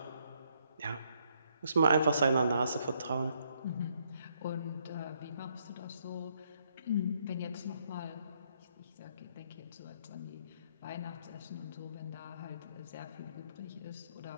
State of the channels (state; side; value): inverted; both; correlation -0.72